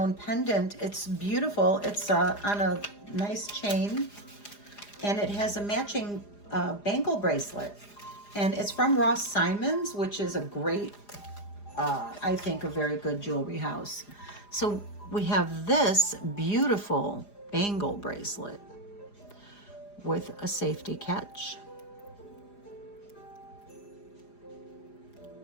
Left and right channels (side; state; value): right; late; 4.9 ms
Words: pendant. It's beautiful. It's on a nice chain, and it has a matching bangle bracelet. And it's from Ross Simons, which is a great, I think, a very good jewelry house. So we have this beautiful bangle bracelet with a safety catch.